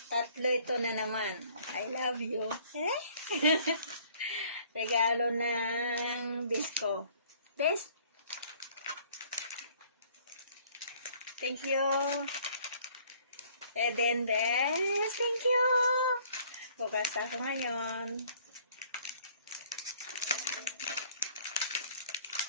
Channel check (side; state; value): both; inverted; correlation -0.58